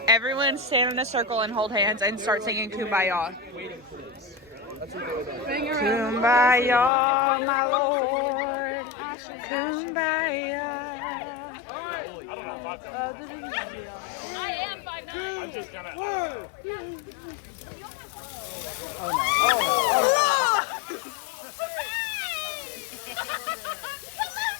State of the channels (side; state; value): right; drops out; at 6.9 s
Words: stand in a circle and hold hands and start singing Kumbaya. Kumbaya, my Lord. Kumbaya.